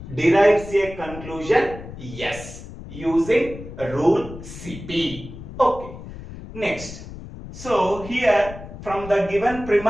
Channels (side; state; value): left; noise; rumble, 13 dB below the sound